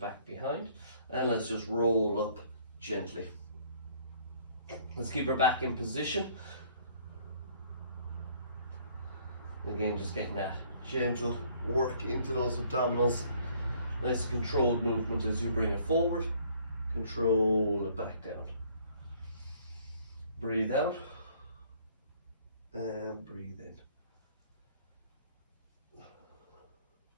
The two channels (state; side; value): inverted; both; correlation -0.60